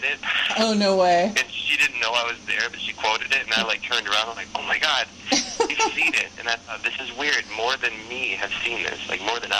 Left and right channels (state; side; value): identical; both; correlation 1.00